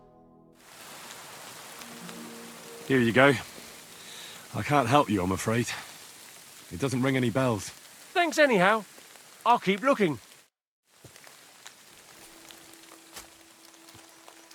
Here you go. I can't help you, I'm afraid. It doesn't ring any bells. Thanks anyhow. I'll keep looking.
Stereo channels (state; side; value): identical; both; correlation 1.00